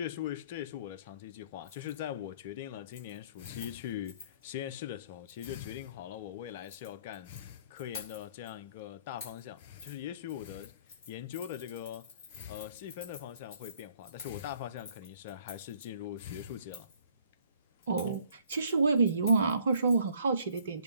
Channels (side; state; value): both; inverted; correlation -0.60